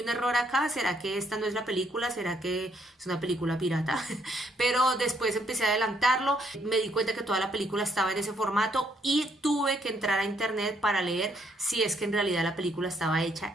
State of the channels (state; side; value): normal; both; correlation 0.71